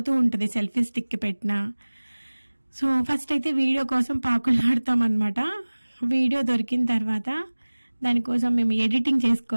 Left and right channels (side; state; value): both; inverted; correlation -1.00